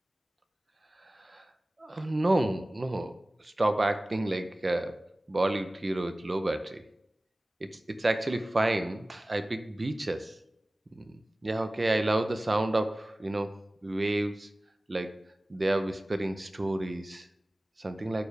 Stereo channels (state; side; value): normal; both; correlation 0.98